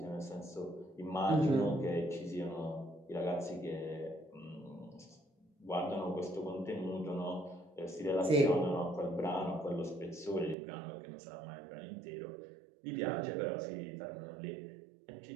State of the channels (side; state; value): left; drops out; at 10.6 s